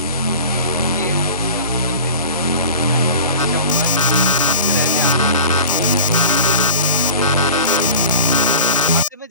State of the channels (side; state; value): both; inverted; correlation -0.36